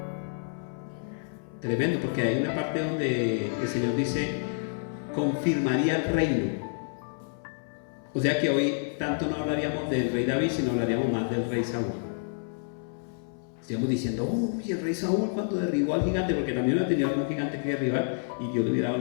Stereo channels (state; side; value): silent; right; 59 dB below the other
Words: Tremendo, porque hay una parte donde el Señor dice: confirmaría el reino. O sea que hoy tanto no hablaríamos del rey David, sino hablaríamos más del rey Saúl. Estaríamos diciendo: uy, el rey Saúl cuando derribó al gigante, porque también hubiera tenido algún gigante que derribar y Dios le hubiera